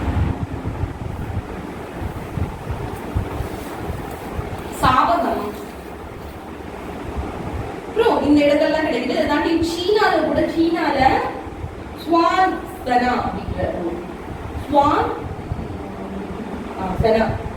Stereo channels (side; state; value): both; identical; correlation 1.00